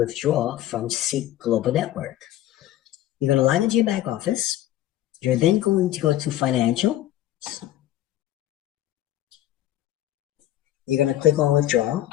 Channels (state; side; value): quieter; right; 13.4 dB